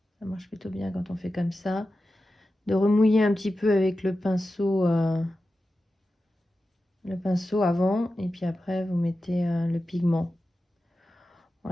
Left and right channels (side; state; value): both; normal; correlation 0.92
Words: Ça marche plutôt bien quand on fait comme ça. De remouiller un petit peu avec le pinceau avant. Et puis après, vous mettez le pigment.